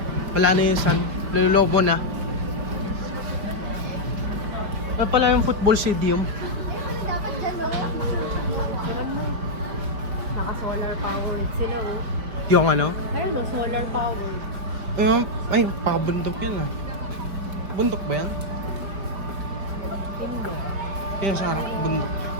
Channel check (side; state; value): left; late; 4.9 ms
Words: Wala na yung sun, lululobo na. Ano pala yung football stadium? Naka-solar powered sila oh. Yung ano? Ayun oh, solar powered. Yung, ay, pakabundok yan ah. Bundok ba yan? Hindi. Kaya sa harap, bundok.